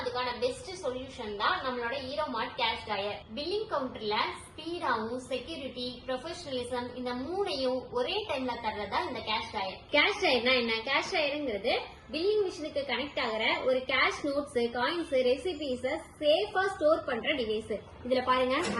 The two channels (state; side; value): identical; both; correlation 1.00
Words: அதுக்கான பெஸ்ட் சொல்யூஷன் தான் நம்மளோட Hero Mart cash drawer. Billing கவுண்டர்ல ஸ்பீடாவும் செக்யூரிட்டி, ப்ரொஃபஷனலிசம் இந்த மூணையும் ஒரே டைம்ல தர்றதா இந்த கேஷ் ட்ராயர். கேஷ் ட்ராயர்னா என்ன? கேஷ் ட்ராயருங்கிறது பில்லிங் மிஷினுக்கு கனெக்ட் ஆகிற ஒரு கேஷ் நோட்ஸ், காயின்ஸ், ரெசிபிஸ் சேஃபா ஸ்டோர் பண்ற டிவைஸ். இதுல பாருங்க,